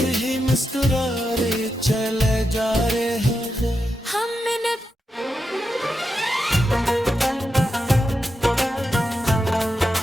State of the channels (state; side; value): normal; both; correlation 0.87